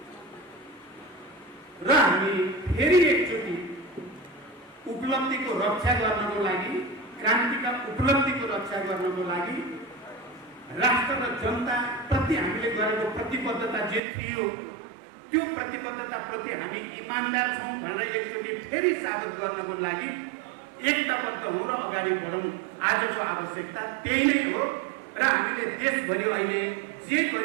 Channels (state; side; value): drops out; left; at 14.0 s